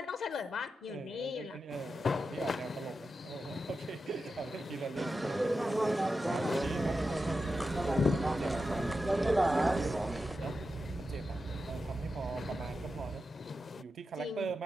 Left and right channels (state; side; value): normal; both; correlation 0.89